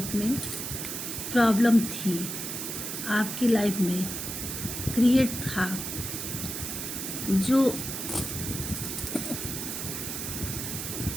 में प्रॉब्लम थी, आपकी लाइफ में क्रिएट था, जो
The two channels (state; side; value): noise; right; hiss, 5 dB below the sound